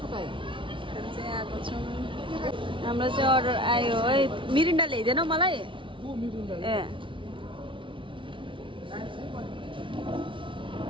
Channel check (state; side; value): late; left; 0.25 ms